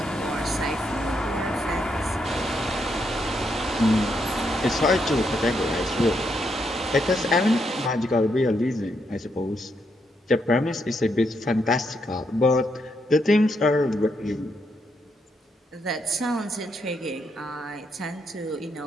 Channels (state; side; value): normal; both; correlation 0.78